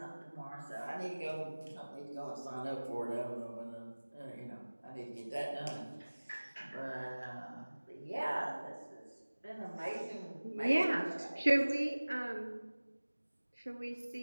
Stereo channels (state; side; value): inverted; both; correlation -1.00